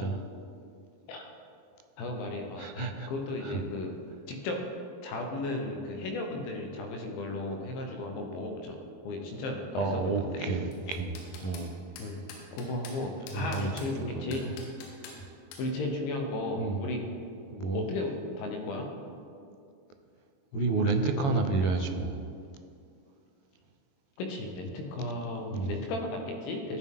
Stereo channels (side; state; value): right; late; 23 ms